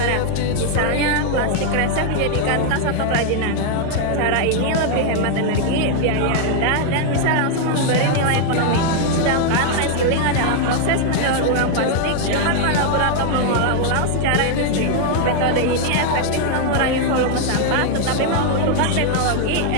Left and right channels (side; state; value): both; different; correlation 0.00